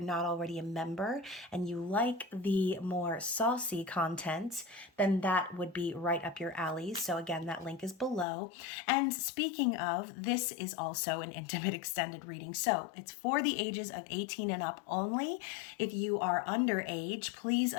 not already a member and you like the more saucy content, then that would be right up your alley. So again, that link is below. And speaking of, this is also an intimate extended reading. So it's for the ages of 18 and up only. If you are underage, please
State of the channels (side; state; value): right; drops out; at 8.2 s